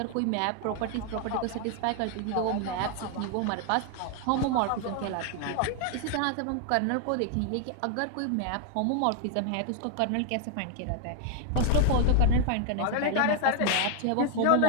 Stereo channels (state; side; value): different; both; correlation 0.00